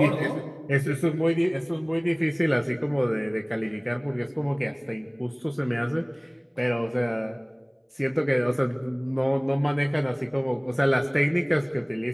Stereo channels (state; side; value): identical; both; correlation 1.00